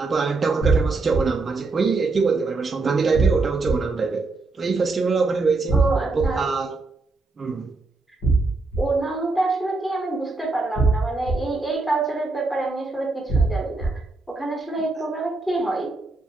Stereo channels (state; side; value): quieter; left; 3.5 dB